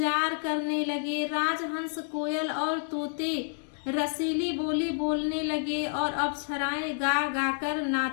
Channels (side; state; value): right; silent; digital silence